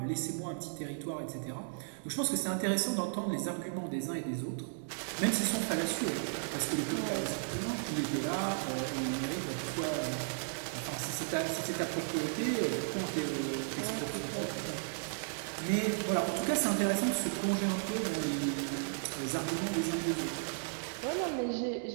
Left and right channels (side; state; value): left; silent; digital silence